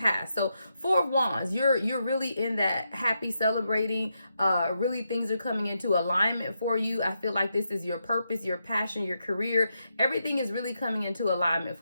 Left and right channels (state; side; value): inverted; both; correlation -0.84